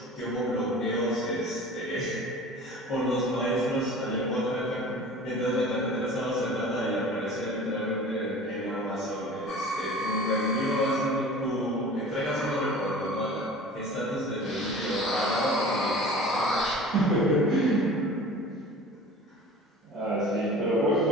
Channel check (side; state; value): both; normal; correlation 0.41